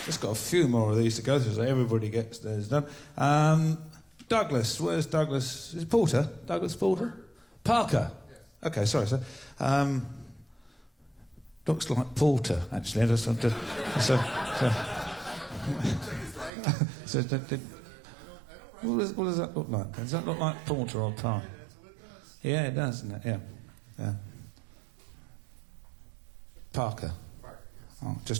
Just got a few more of these to go through so everybody gets theirs done. Douglas, where's Douglas? Is it Porter? Douglas Porter? Parker? Yes. Okay, sorry, sir. Looks like Porter, actually. What does that look like? Does that look like Porter or Parker? Yeah, it does, doesn't it? Yeah. Parker. Oh,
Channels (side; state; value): left; drops out; at 16.5 s